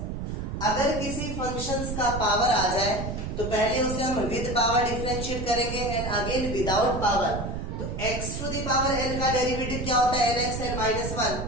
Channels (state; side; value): noise; right; rumble, 5 dB below the sound